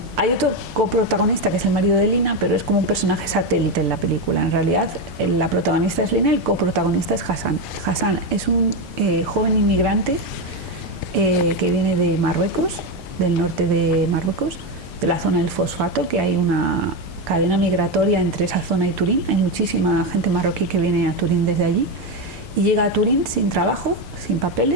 hay otro coprotagonista que es el marido de Lina, pero es como un personaje satélite en la película. En realidad, la protagonista es Lina y el coprotagonista es Hassan. Hassan es un joven inmigrante que viene de Marruecos, del norte de Marruecos, de la zona del fosfato, que hay una cadena migratoria entre esa zona y Turín. Hay muchísima gente marroquí que viene a Turín desde allí y llega a Turín sin trabajo, sin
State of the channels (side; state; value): both; normal; correlation 0.10